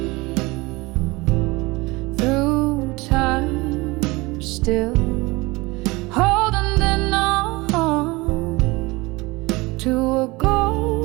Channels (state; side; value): quieter; left; 22.9 dB